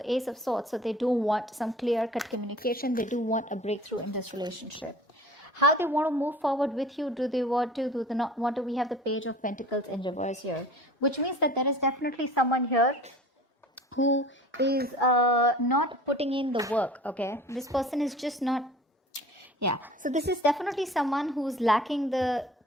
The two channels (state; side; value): normal; both; correlation 0.43